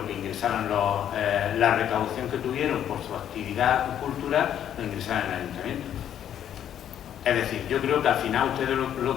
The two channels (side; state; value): right; quieter; 10.1 dB